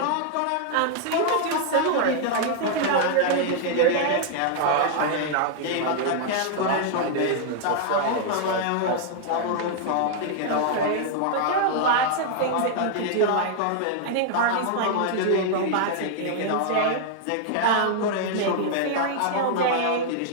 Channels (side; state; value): both; different; correlation -0.01